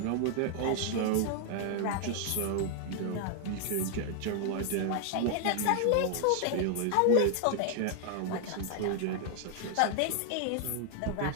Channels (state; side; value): different; both; correlation 0.00